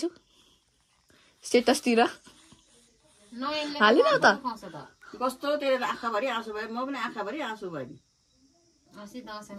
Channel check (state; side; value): identical; both; correlation 1.00